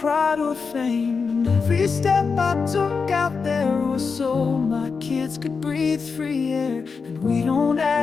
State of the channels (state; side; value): quieter; right; 5.2 dB